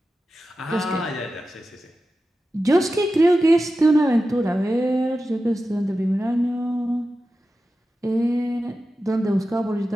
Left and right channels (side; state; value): both; normal; correlation 0.93